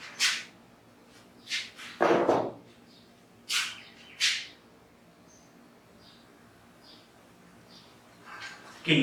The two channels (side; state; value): both; identical; correlation 1.00